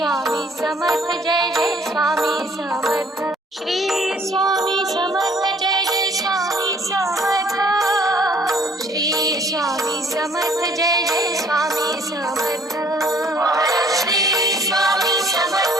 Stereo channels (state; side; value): normal; both; correlation 0.58